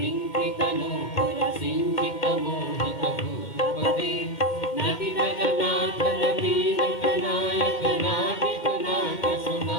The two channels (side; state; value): right; late; 2.1 ms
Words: तनु सिंचित मोहित भूपते नटि जगन्नाथ नवीन नायक नाटिक नाट